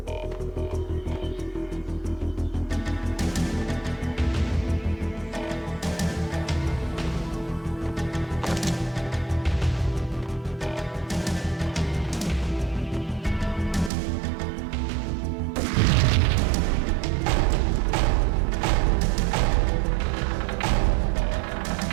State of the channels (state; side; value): drops out; left; at 13.9 s